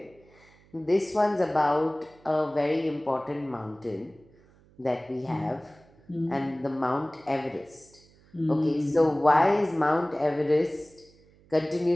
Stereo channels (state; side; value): noise; right; hum, 29 dB below the sound